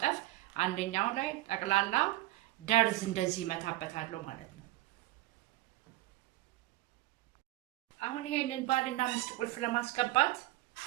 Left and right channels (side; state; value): left; quieter; 17.2 dB